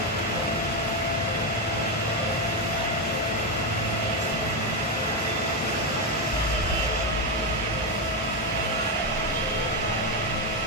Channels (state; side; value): normal; both; correlation 0.08